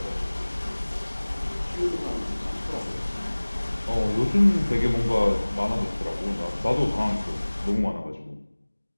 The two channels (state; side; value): inverted; both; correlation -1.00